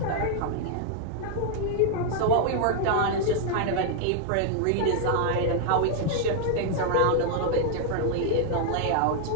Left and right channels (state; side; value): different; both; correlation 0.00